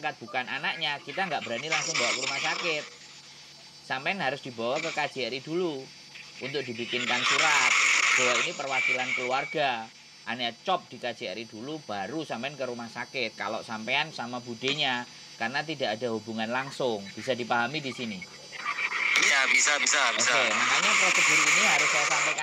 bukan anaknya, kita nggak berani langsung bawa ke rumah sakit. Sampean harus dibawa ke KJRI dulu untuk dibikinkan surat bahwa ini perwakilan keluarga. Ane cop di KJRI dulu baru sampean ke rumah sakit. Kalau sampean sama budenya, karena tidak ada hubungan langsung. Bisa dipahami di sini? Ya, bisa. Oke, makanya prosedur ini harus saya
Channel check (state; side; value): identical; both; correlation 1.00